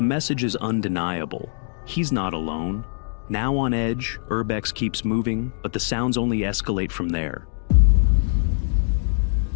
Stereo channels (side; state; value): right; silent; digital silence